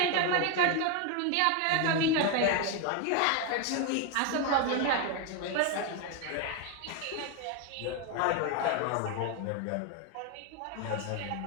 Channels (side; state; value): both; different; correlation 0.02